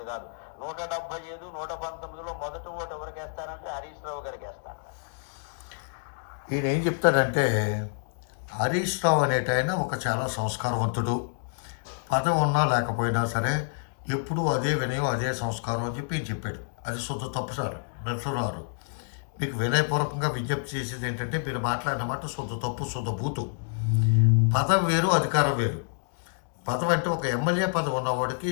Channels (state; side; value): silent; right; digital silence